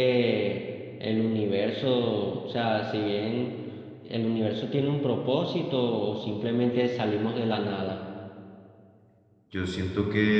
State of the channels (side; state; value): both; identical; correlation 1.00